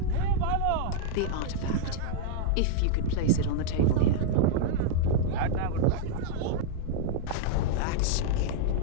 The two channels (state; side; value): different; both; correlation -0.01